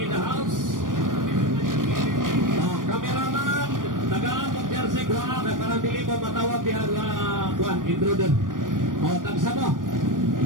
the house. Cameraman, tagaan ng jersey kuha, may parang dili mo matawag diyan kuhan, intruder. Tagsa mo.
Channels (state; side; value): late; left; 0.89 ms